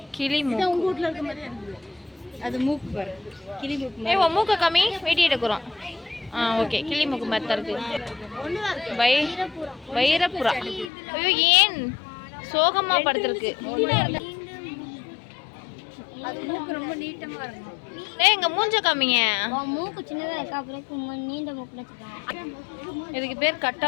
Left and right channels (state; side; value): drops out; right; at 10.9 s